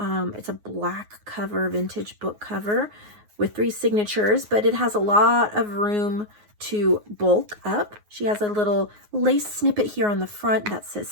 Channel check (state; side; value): late; left; 9.6 ms